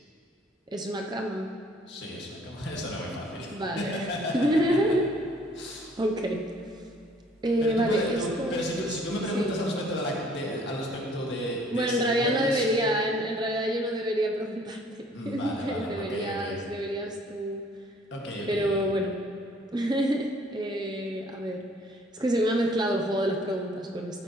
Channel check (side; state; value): both; normal; correlation 0.58